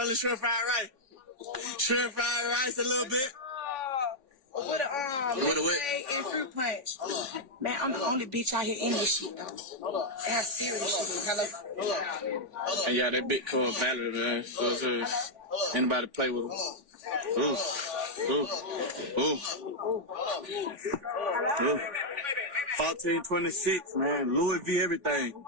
shrimp fried rice? Shrimp fried rice a little bit. With a what? And fruit punch. Man, I'm the only bitch out here in this shit, though. That's serious shit. Hello? And yeah, that big called Valerie, man. So, anybody play with him? Ooh. 1426, man. Louis V everything.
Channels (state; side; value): late; left; 3.5 ms